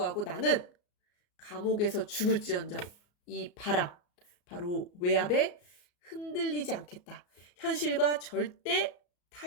나는 감옥에서 죽을지언정 이 바로 외압에 흔들리지 않겠다. 현실과 절대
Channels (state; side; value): late; right; 34 ms